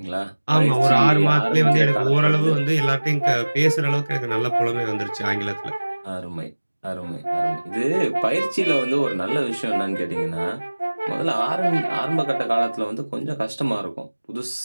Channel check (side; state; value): both; inverted; correlation -1.00